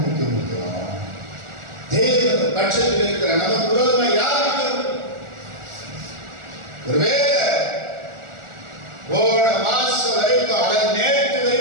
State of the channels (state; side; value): late; left; 1.4 ms